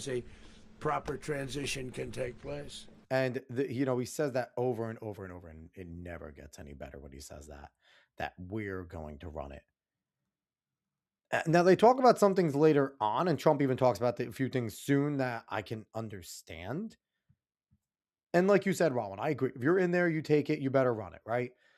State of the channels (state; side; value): identical; both; correlation 1.00